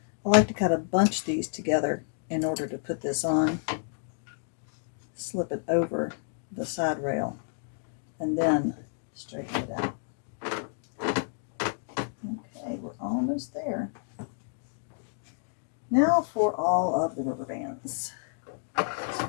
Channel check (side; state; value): right; silent; digital silence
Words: I like to kind of bunch these together in order to put this on. Slip it over the side rail and then straighten it out. Okay, we're almost there. Now for all of the rubber bands.